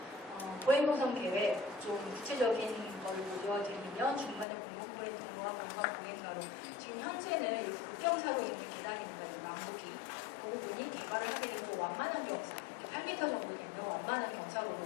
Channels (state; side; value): drops out; right; at 4.5 s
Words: 보행노선 계획 좀 구체적인 걸 보여드리면 중간에 공공보행 통로와 공간보행가로 지금 현재는 국경사로 있는 계단입니다. 남북이 그 부분이 개발을 하게 되면 완만한 경사 8m 정도 되면 완만한